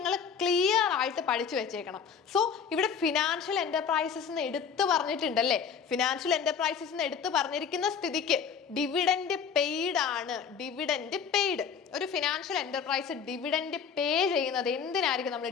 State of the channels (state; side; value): quieter; right; 6.7 dB